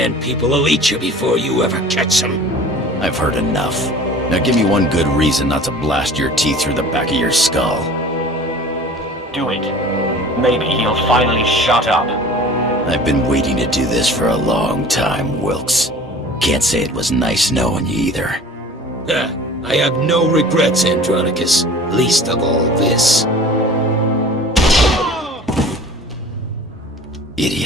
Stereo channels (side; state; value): both; normal; correlation 0.44